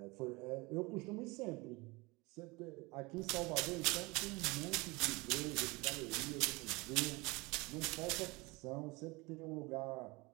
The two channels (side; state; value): left; quieter; 24.7 dB